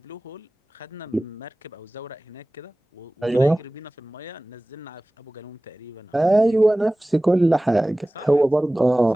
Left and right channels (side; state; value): both; normal; correlation 0.98